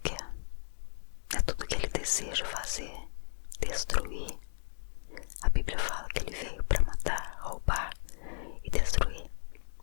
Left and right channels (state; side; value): silent; right; digital silence